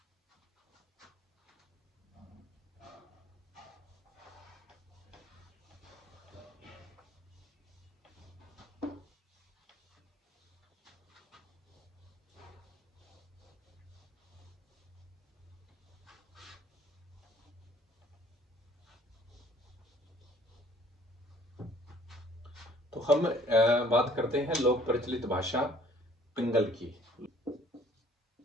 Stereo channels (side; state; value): both; normal; correlation 0.57